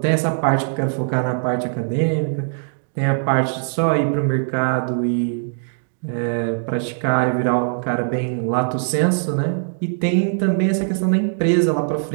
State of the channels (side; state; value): left; silent; digital silence